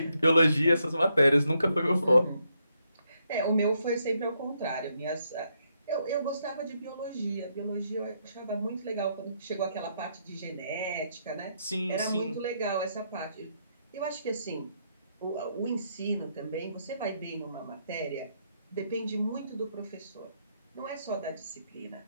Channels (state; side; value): inverted; both; correlation -0.77